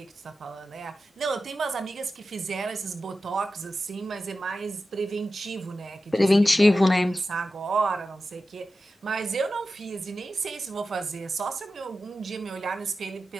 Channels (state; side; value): normal; both; correlation 0.93